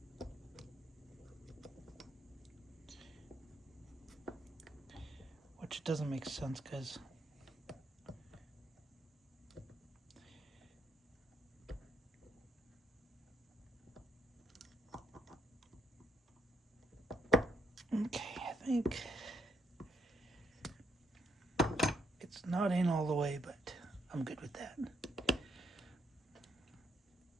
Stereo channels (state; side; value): normal; both; correlation 0.77